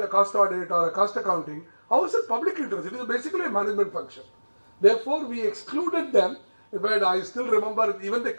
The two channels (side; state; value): both; inverted; correlation -1.00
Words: a cost audit or a cost accounting, how is it public interest? It is basically a management function. Therefore, we excluded them. But I still remember even the